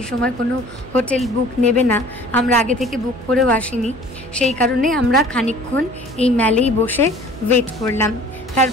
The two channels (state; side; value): noise; right; hum, 17 dB below the sound